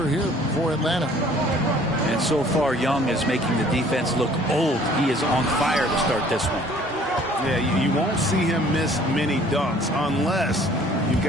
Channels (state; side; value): normal; both; correlation 0.55